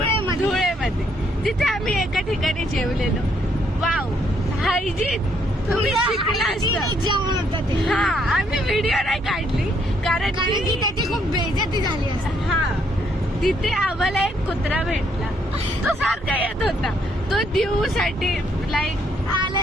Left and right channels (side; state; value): both; normal; correlation 0.71